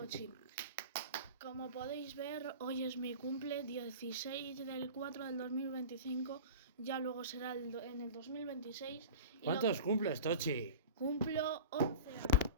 Como podéis ver, hoy es mi cumple, 16 del 4 del 2025, ya luego será en el 2026. ¿Cuántos cumples, Tochi? Cumplo 11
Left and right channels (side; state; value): both; inverted; correlation -0.34